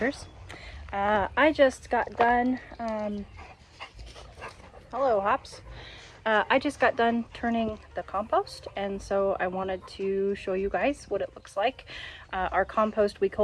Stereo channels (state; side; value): identical; both; correlation 1.00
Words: I just got done, hello Hops. I just got done turning the compost, and so I wanted to show you guys what it looks like. Our compost, we